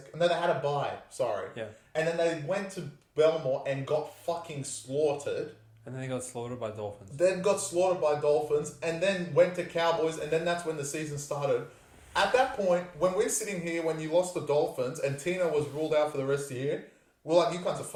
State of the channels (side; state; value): both; identical; correlation 1.00